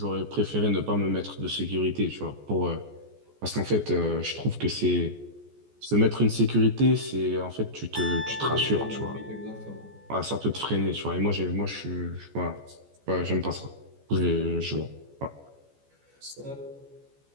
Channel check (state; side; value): late; left; 14 ms